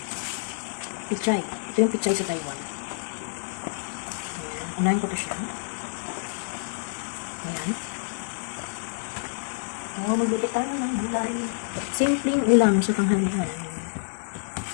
pichay. Ito yung pichay sa Taiwan. Ayan, unahin ko to siya. Ayan. So, magluto tayo ng gulay. Simpleng ulam sa tanghalian.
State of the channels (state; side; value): silent; right; 60 dB below the other